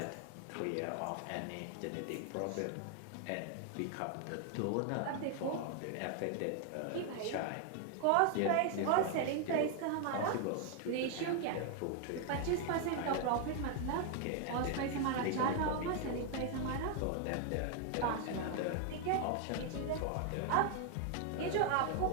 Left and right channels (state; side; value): different; both; correlation 0.00